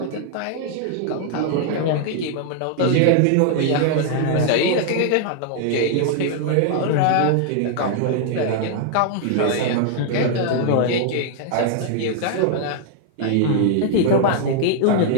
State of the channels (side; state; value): both; different; correlation 0.00